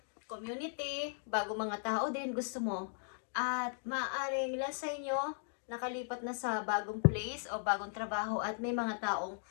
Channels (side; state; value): right; silent; digital silence